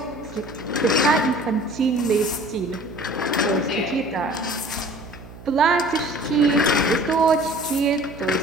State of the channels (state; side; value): noise; right; hum, 18 dB below the sound